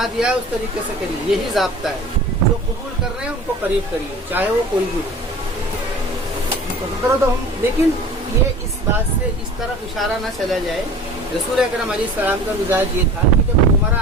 دیا ہے اس طریقے سے کریے، یہی ضابطہ ہے۔ جو قبول کر رہے ہیں ان کو قریب کریے، چاہے وہ کوئی بھی ہو۔ لیکن یہ اس بات سے اس طرف اشارہ نہ چلا جائے، رسول اکرم علیہ السلام کا مزاج یہ تھا کہ جب عمرہ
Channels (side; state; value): both; normal; correlation 0.41